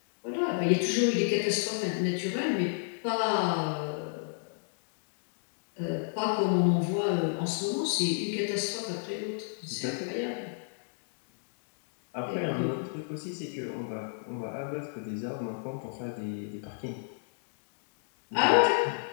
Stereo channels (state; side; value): silent; right; digital silence